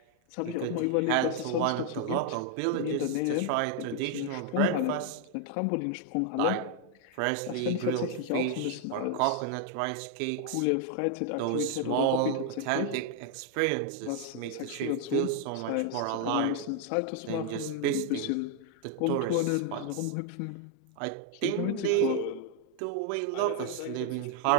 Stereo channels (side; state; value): both; different; correlation 0.00